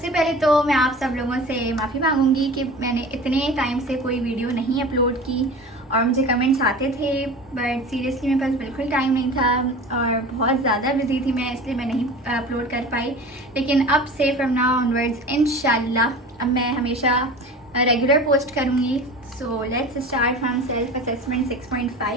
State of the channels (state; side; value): normal; both; correlation 0.36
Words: पहले तो मैं आप सब लोगों से माफ़ी मांगूंगी कि मैंने इतने टाइम से कोई वीडियो नहीं अपलोड की और मुझे कमेंट्स आते थे बट सीरियसली मेरे पास बिल्कुल टाइम नहीं था और बहुत ज़्यादा बिजी थी मैं, इसलिए मैं नहीं अपलोड कर पाई। लेकिन अब से फ्रॉम नाउ ऑनवर्ड्स इंशाल्लाह अब मैं हमेशा रेगुलर पोस्ट करूँगी। So let's start from self-assessment